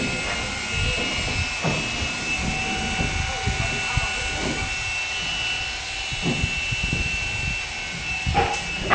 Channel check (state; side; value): identical; both; correlation 1.00